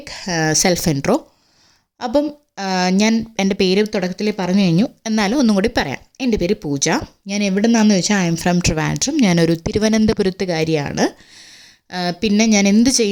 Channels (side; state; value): both; identical; correlation 1.00